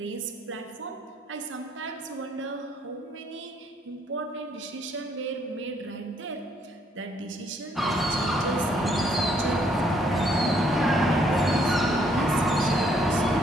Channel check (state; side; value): normal; both; correlation 0.67